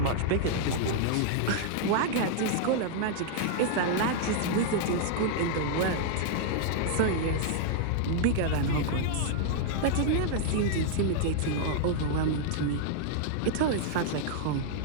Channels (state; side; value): different; both; correlation -0.01